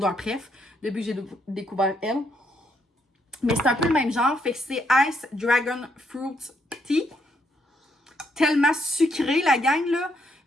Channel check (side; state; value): both; normal; correlation 0.74